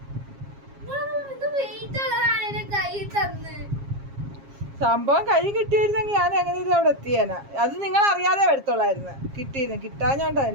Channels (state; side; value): late; left; 7.4 ms